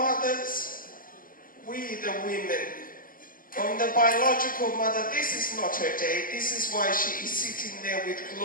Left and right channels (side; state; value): right; late; 0.41 ms